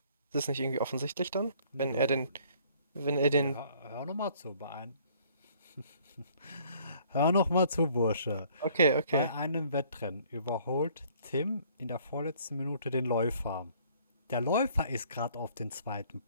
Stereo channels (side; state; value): both; inverted; correlation -0.59